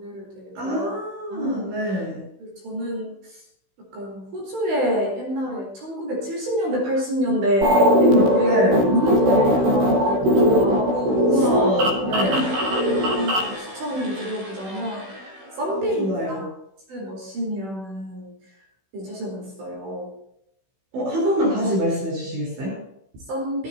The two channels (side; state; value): left; late; 16 ms